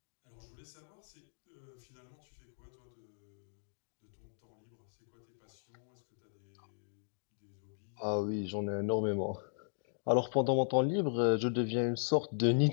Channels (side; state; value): right; silent; digital silence